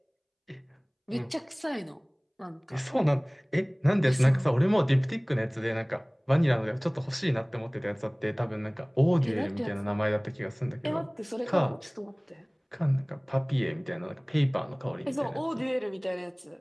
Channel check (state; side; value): identical; both; correlation 1.00